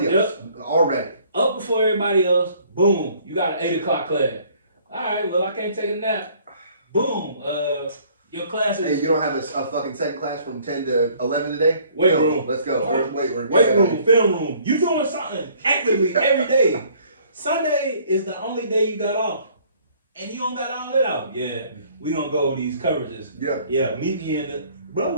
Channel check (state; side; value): inverted; both; correlation -0.58